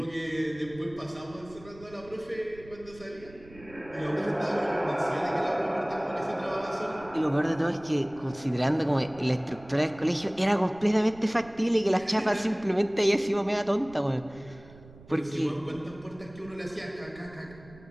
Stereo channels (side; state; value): right; noise; rumble, 21 dB below the sound